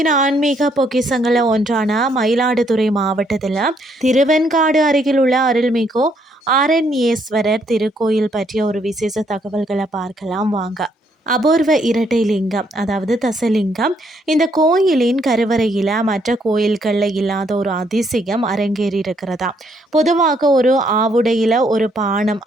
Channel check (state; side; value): normal; both; correlation 0.71